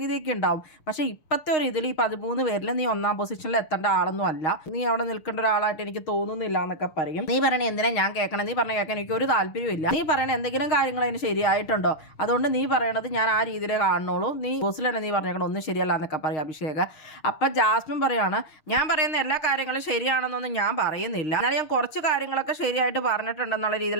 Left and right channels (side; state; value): right; late; 6.5 ms